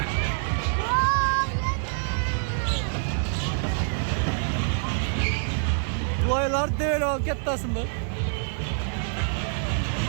Бұлайлар дөйел ол кеттасын бұл.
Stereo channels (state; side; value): silent; left; digital silence